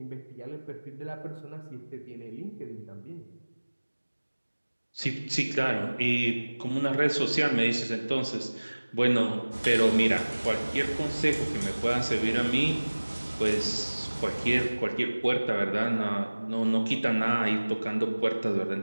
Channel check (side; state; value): both; inverted; correlation -1.00